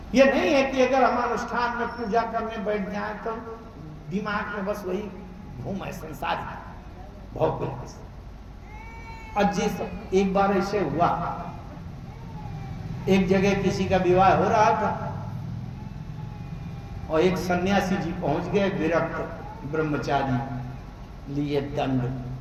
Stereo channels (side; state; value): both; identical; correlation 1.00